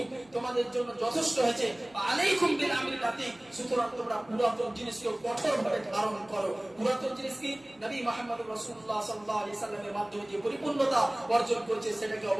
তোমাদের জন্য যথেষ্ট হয়েছে, আলাইকুম বিল আমরি লাতীফ, সুতরাং তোমরা পুরাতন জিনিসকে কঠোরভাবে ধারণ করো। পুরাতন জিনিস কি? নবী মুহাম্মদ রাসূলুল্লাহ সাল্লাল্লাহু আলাইহি সাল্লামের মাধ্যমে যে পরিপূর্ণতা অর্জন করেছে সেটাকে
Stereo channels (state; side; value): noise; right; hum, 30 dB below the sound